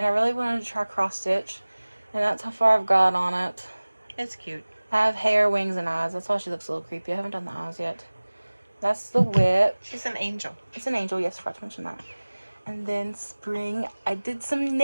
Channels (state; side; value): inverted; both; correlation -1.00